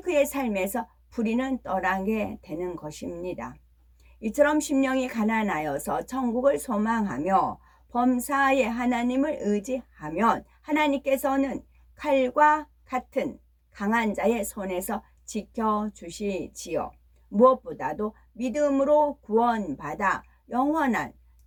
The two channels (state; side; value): identical; both; correlation 1.00